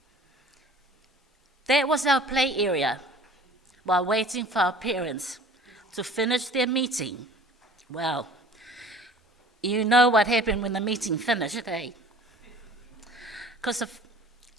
That was our play area while waiting for our parents to finish their meeting. Well, you know what happened when the meeting finished, eh? Because of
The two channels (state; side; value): normal; both; correlation 0.47